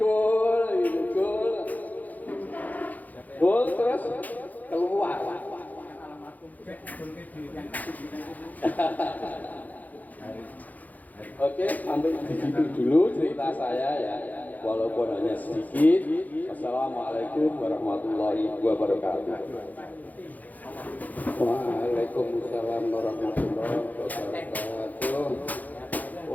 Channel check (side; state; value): right; late; 0.080 ms